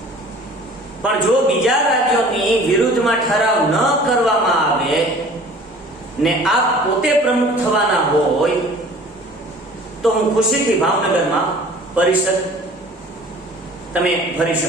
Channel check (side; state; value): both; normal; correlation 0.47